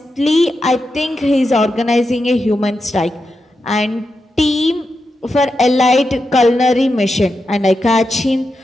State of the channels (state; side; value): normal; both; correlation 0.88